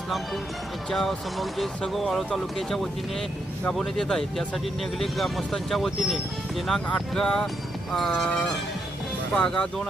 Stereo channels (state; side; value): normal; both; correlation 0.79